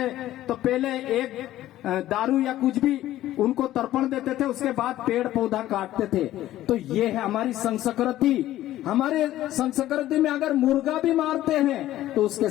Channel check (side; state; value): right; quieter; 14.1 dB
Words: तो पहले एक दारू या कुछ भी उनको तर्पण देते थे, उसके बाद पेड़ पौधा काटते थे। तो ये है हमारी संस्कृति। हमारे संस्कृति में अगर मुर्गा भी मारते हैं तो उसके